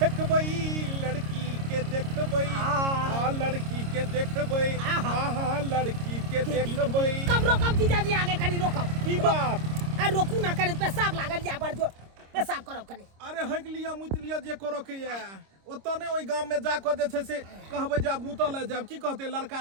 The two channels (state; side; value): late; left; 26 ms